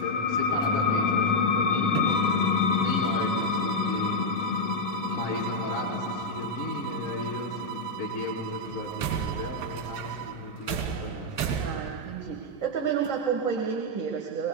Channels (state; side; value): late; right; 3.7 ms